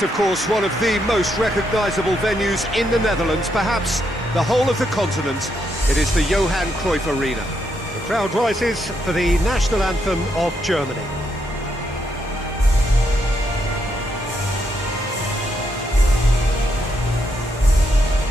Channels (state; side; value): normal; both; correlation 0.78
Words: of course, one of the most recognisable venues in the Netherlands, perhaps the whole of the continent. It is the Johan Cruyff Arena. The crowd rises for the national anthem of Germany.